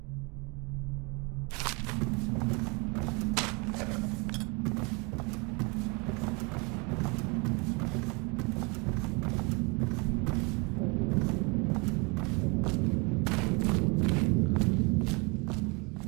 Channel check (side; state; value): left; quieter; 29.7 dB